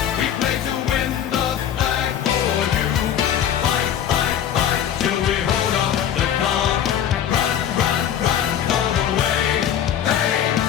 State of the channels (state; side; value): quieter; right; 9.8 dB